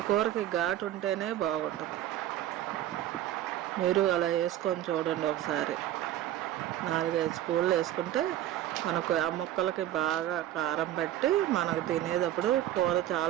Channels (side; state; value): left; quieter; 12.7 dB